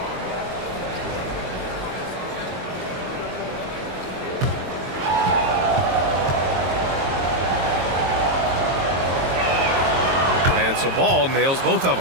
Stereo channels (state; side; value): late; left; 22 ms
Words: And so Ball nails both of